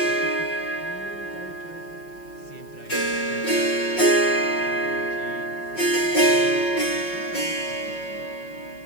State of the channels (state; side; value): late; right; 5.4 ms